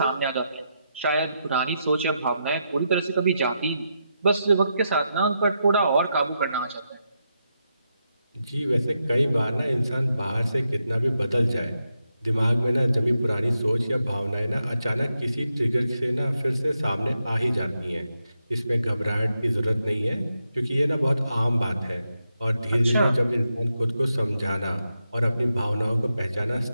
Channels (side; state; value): both; inverted; correlation -0.84